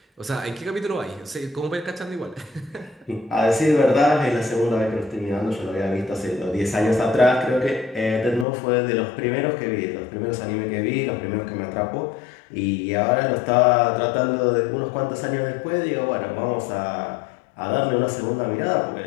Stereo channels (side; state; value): right; drops out; at 8.5 s